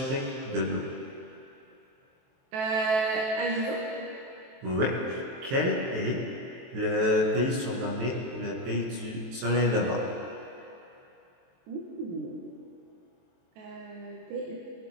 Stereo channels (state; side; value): late; left; 23 ms